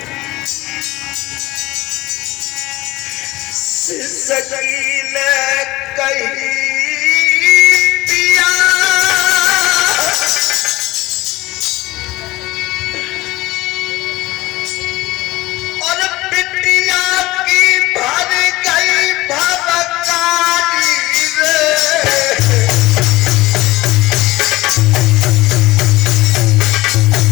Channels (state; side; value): quieter; right; 19.1 dB